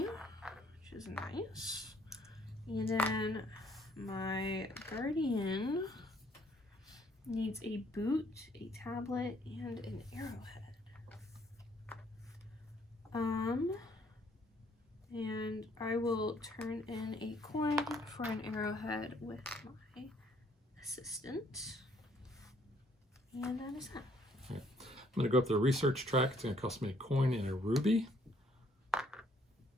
which is nice. And then my guardian needs a boot, a tablet, and an arrowhead. And I will turn in a coin for an arrowhead with my assistant. And that is that. Okay. I'm going to go up the research track. It's going to cost me a coin and a ruby.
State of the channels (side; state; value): both; normal; correlation 0.65